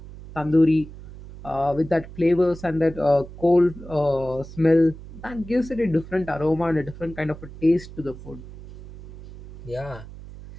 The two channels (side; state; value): right; noise; hum, 15 dB below the sound